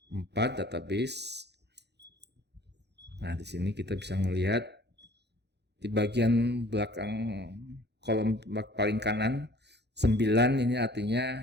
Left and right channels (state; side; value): late; left; 0.49 ms